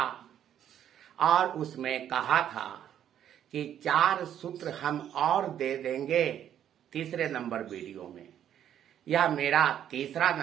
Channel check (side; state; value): left; quieter; 10.2 dB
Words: और उसमें कहा था कि 4 सूत्र हम और दे देंगे तीसरे नंबर वीडियो में। यह मेरा तीसरा